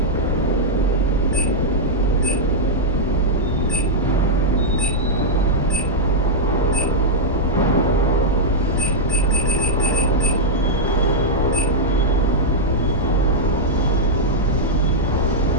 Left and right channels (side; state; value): both; normal; correlation -0.06